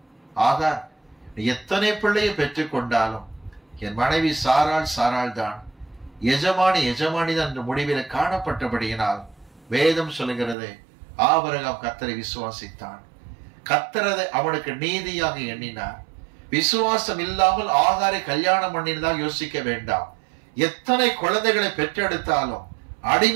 ஆகார், எத்தனை பிள்ளையை பெற்றுக் கொண்டாலும் என் மனைவி சாராள் தான், எஜமானி தான் என்ற முடிவில் காணப்பட்டபடியினால் வேதம் சொல்லுகிறது ஆபிரகாம் கர்த்தரை விசுவாசித்தான். கர்த்தரதை அவனுக்கு நீதியாக எண்ணினார். விசுவாசம் இல்லாமல் ஆகாரை கல்யாணம் பண்ணினதாக யோசிக்க வேண்டாம். எத்தனை குழந்தைகளை பெற்றெடுத்தாலும்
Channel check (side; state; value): left; drops out; at 10.6 s